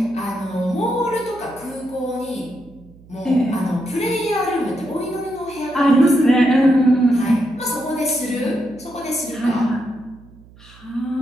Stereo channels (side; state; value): right; noise; hum, 24 dB below the sound